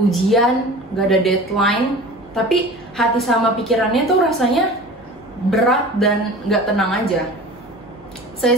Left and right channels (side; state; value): right; noise; hum, 29 dB below the sound